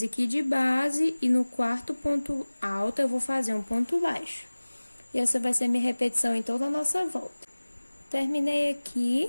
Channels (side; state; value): both; inverted; correlation -1.00